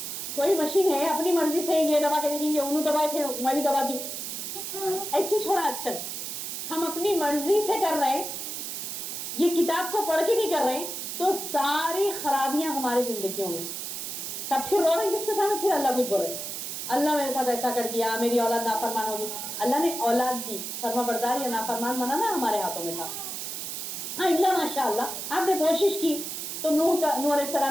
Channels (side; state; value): right; noise; hiss, 6 dB below the sound